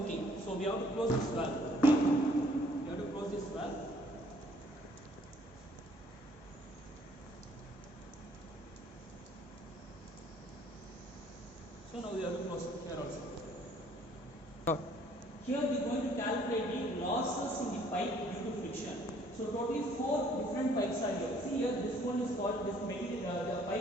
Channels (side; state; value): both; normal; correlation 0.61